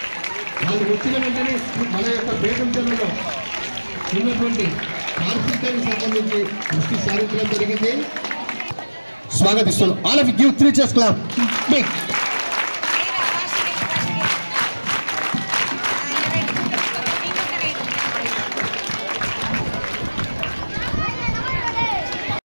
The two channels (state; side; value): inverted; both; correlation -1.00